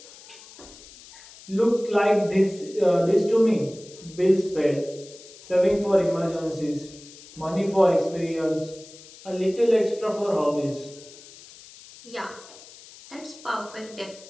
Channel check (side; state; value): left; noise; hiss, 20 dB below the sound